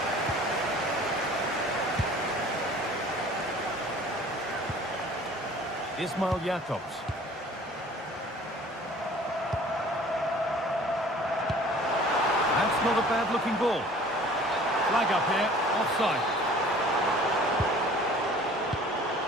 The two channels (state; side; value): normal; both; correlation 0.49